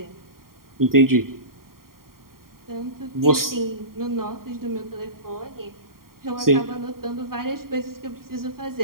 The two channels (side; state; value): left; late; 0.92 ms